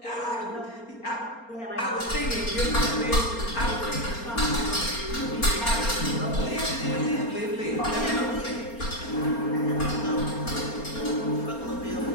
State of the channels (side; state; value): right; late; 4.3 ms